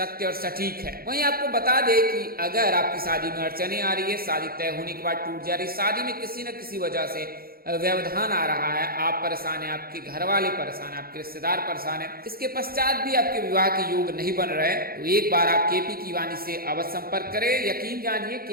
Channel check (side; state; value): left; late; 0.44 ms